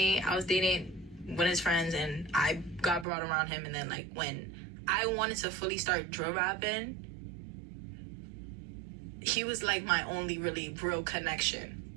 I was dating one of his friends, and I got brought around him, and then, like, when I wanted to fully start drill rapping, he was, like, my only really real connection,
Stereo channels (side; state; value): left; drops out; at 3.1 s